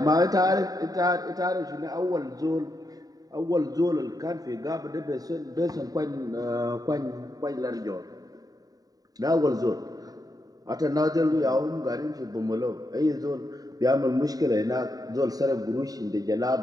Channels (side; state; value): left; late; 0.18 ms